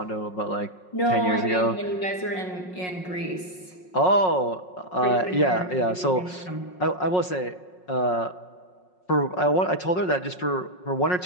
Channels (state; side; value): late; right; 5.5 ms